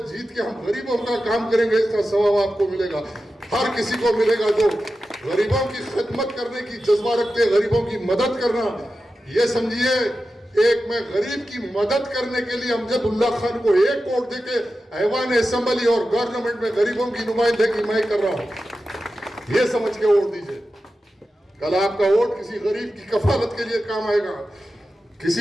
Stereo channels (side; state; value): both; normal; correlation 0.92